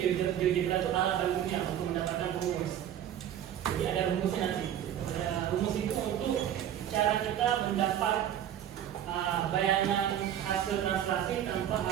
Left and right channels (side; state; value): left; quieter; 10.6 dB